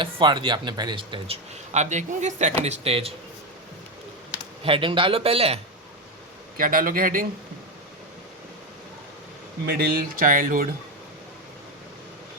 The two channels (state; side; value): normal; both; correlation 0.11